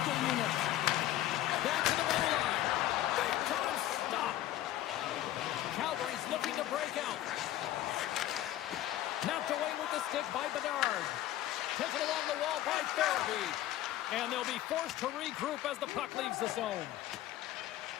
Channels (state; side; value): quieter; right; 13.9 dB